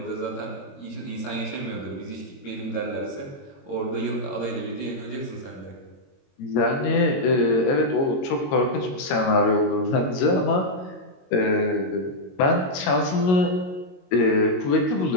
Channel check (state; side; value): late; right; 22 ms